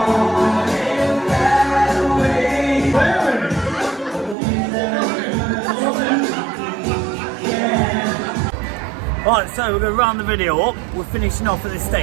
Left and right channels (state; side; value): drops out; left; at 4.4 s